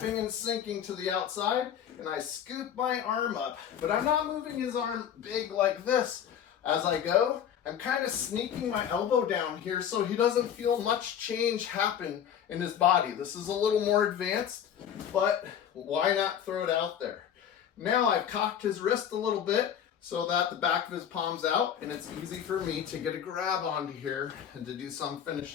and sinking to the outside and I scoop my arm up, but I'm not moving his arm big like this. As I go, I'm kind of sneaking my elbow down here so he doesn't feel much change happen in his body. This is a little more advanced, but why not throw it out there? Now I've cocked his wrist a little bit so that the back of his palm's out and it's easy for me to get a grab onto here and to do some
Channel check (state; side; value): quieter; right; 9.2 dB